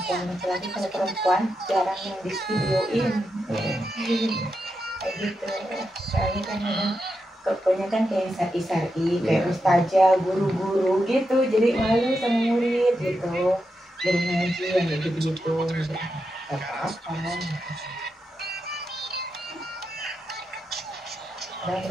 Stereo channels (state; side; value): normal; both; correlation 0.86